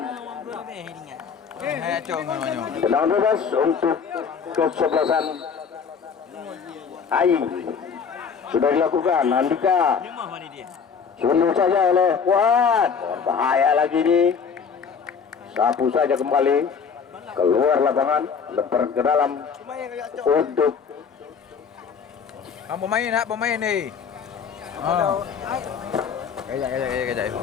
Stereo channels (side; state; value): right; quieter; 6.3 dB